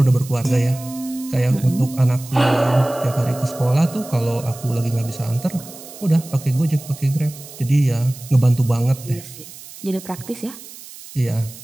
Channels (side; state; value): right; noise; hiss, 16 dB below the sound